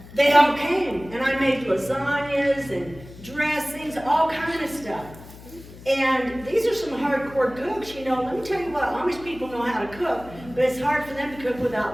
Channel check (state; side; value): noise; left; hum, 18 dB below the sound